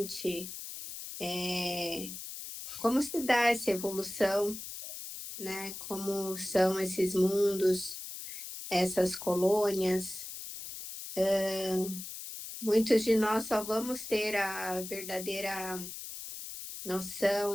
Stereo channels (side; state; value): left; noise; hiss, 9 dB below the sound